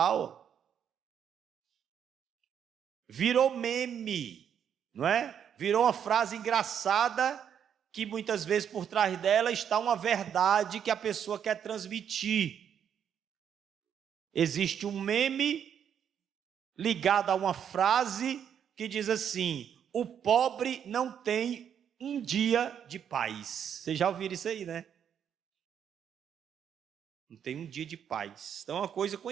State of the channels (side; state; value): left; quieter; 8.6 dB